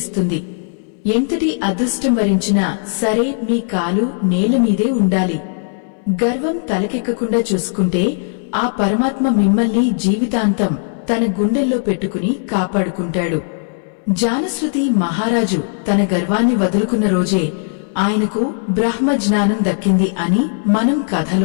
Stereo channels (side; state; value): right; silent; 63 dB below the other